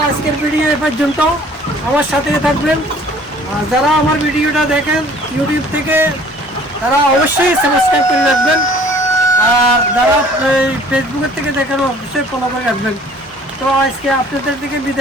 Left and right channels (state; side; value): normal; both; correlation 0.53